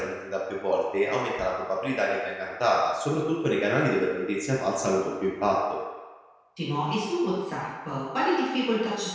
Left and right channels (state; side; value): identical; both; correlation 1.00